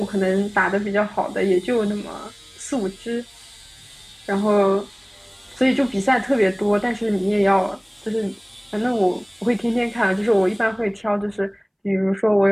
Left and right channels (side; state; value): both; identical; correlation 1.00